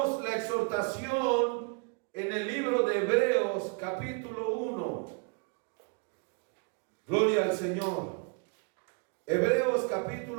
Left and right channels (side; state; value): left; quieter; 35.5 dB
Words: la exhortación en el libro de Hebreos capítulo 1. Gloria al Señor. Hebreos